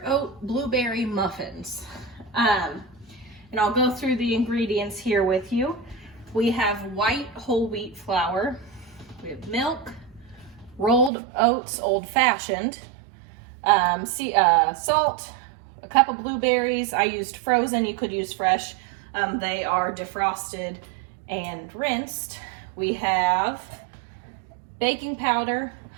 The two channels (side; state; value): left; drops out; at 11.1 s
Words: oat blueberry muffins. And I'll go through the ingredients here with you. We have white whole wheat flour. We have milk, rolled oats old-fashioned, salt, a cup of blueberries. I used frozen, you could use fresh. They are defrosted and rinsed. We have baking powder,